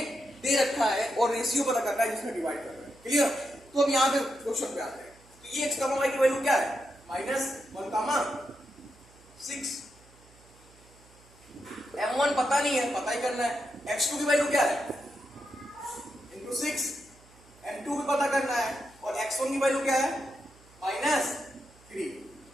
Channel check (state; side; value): noise; right; hum, 26 dB below the sound